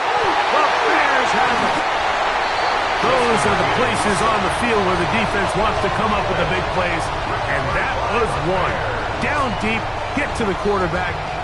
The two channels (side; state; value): both; identical; correlation 1.00